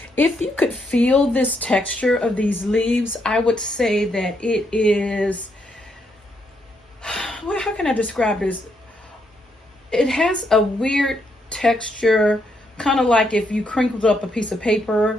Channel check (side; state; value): both; normal; correlation 0.77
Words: if you could feel this texture of these leaves, I would say that it is, well, how can I describe this? It has a weird texture, kind of like if you crinkled up a piece of paper